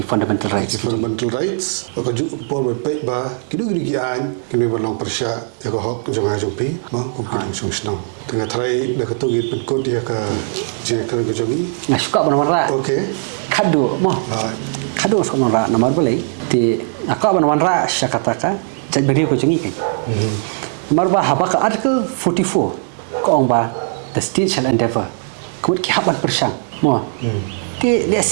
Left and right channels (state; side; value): silent; left; digital silence